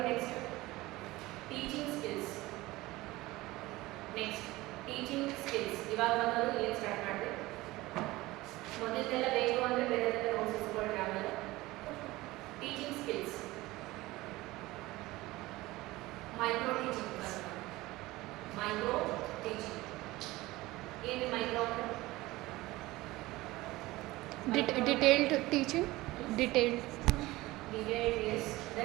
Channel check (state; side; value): quieter; left; 19.2 dB